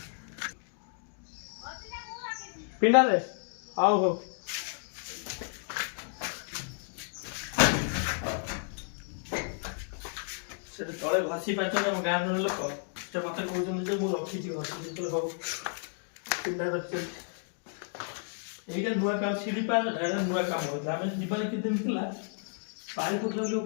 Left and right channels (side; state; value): right; silent; 56 dB below the other